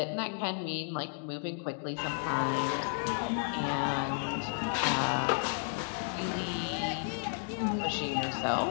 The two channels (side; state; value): right; silent; digital silence